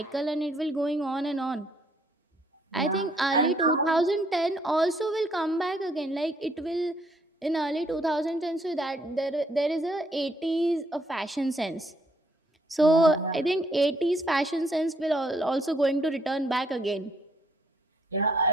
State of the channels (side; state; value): both; normal; correlation 0.69